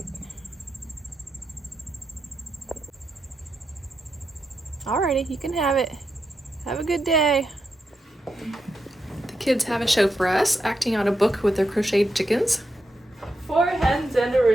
Alrighty, you can have it. Have a good day. The kids have a show for us, acting out a book with their crocheted chickens. 4 Hens and a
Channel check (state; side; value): normal; both; correlation 0.85